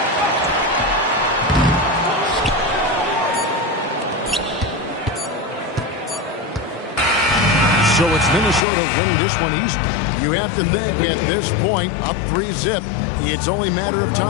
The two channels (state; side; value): drops out; right; at 8.6 s